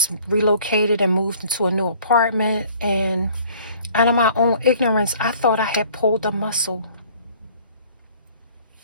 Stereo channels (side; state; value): both; inverted; correlation -0.54